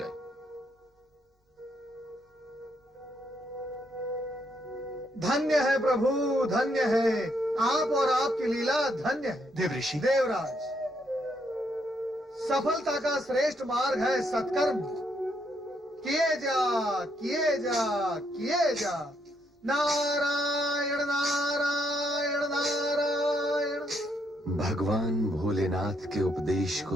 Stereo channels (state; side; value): normal; both; correlation 0.75